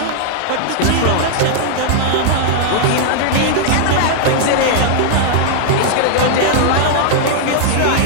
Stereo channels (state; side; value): different; both; correlation -0.01